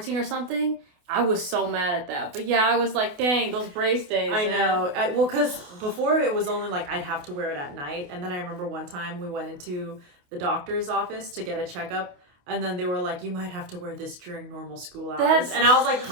or something. I was so mad at that. But yeah, I was like, dang, those brace days. I know. Well, because before it was only like I'd have to wear it at night. And then I remember one time we went into the doctor's office to get a checkup. And then they were like, you might have to wear this during normal school hours. And I was like,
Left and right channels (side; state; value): left; late; 28 ms